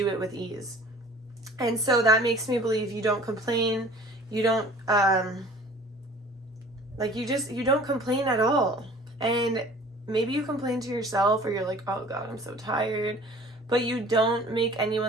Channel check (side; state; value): both; normal; correlation 0.47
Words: it with ease. And so that makes me believe you don't complain. You don't, you don't complain at all. And maybe you complain to yourself, or you're like, oh God, I'm so tired. But you don't make